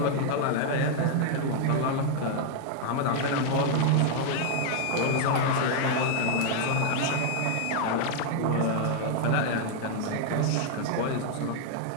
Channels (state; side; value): different; both; correlation 0.00